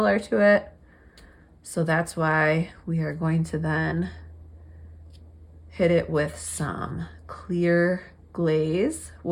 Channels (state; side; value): identical; both; correlation 1.00